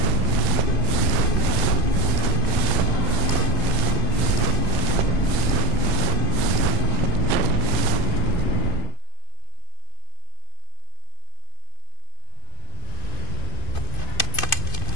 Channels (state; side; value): late; right; 2.5 ms